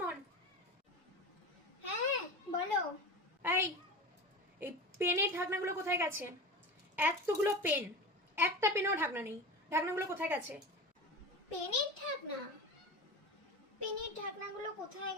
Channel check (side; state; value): both; normal; correlation 0.28